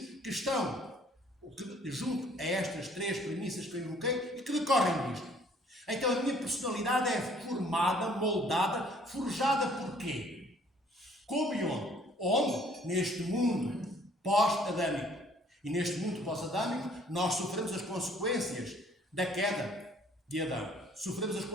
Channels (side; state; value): both; normal; correlation 0.59